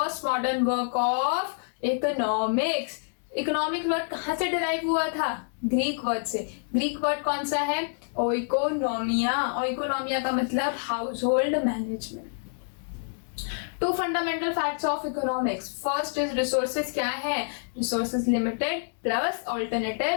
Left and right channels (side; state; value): right; silent; digital silence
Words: modern work of economics. Economic word कहां से डिराइव हुआ था? ग्रीक वर्ड से। ग्रीक वर्ड कौन सा है? ओइकोनोमिया। ओइकोनोमिया का मतलब household management. Two fundamental facts of economics. First is resources क्या है? Resources limited plus